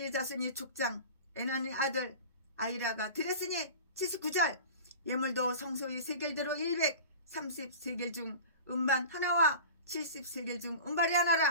자손이 족장 에난의 아들 아이라가 드렸으니 79절 예물도 성소의 세겔대로 130세겔 중 음반 하나와 70세겔 중 음발이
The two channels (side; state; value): both; inverted; correlation -0.36